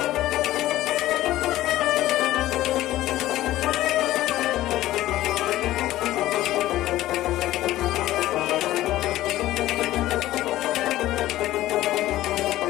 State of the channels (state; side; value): quieter; right; 15.2 dB